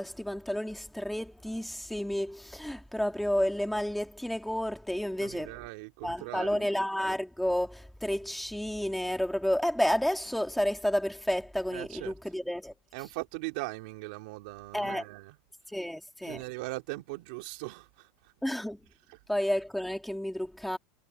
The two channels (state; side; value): normal; both; correlation 0.94